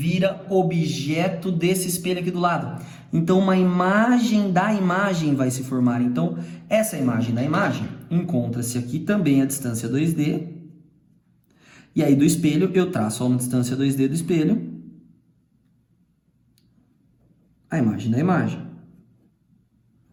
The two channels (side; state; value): both; identical; correlation 1.00